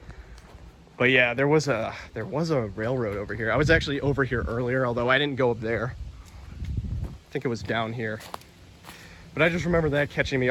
But yeah, there was a railroad over here. I was actually over here earlier, although I didn't go up there. I think it was down here. But I just remember that catching me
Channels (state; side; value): identical; both; correlation 1.00